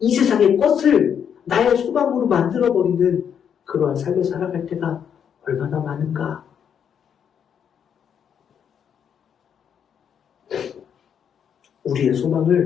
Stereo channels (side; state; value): right; quieter; 8.1 dB